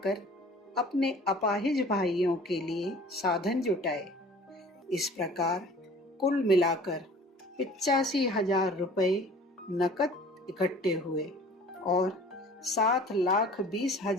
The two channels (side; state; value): both; normal; correlation 0.47